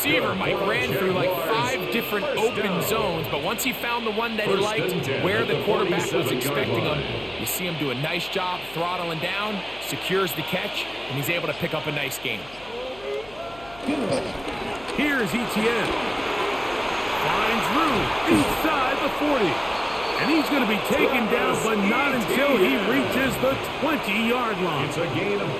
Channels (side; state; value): left; noise; hum, 22 dB below the sound